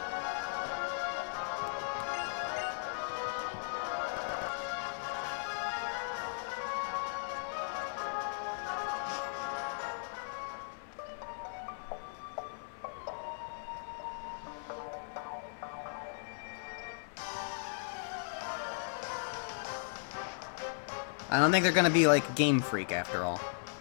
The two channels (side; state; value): right; silent; 53 dB below the other